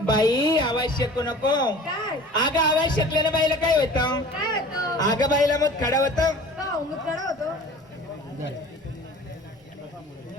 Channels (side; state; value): both; normal; correlation 0.42